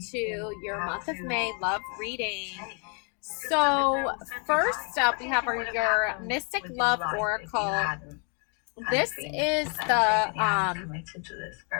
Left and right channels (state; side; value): quieter; right; 39.0 dB